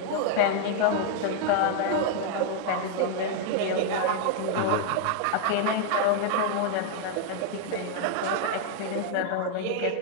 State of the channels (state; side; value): different; both; correlation 0.00